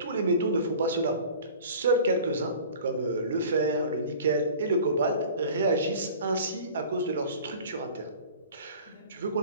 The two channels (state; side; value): inverted; both; correlation -0.43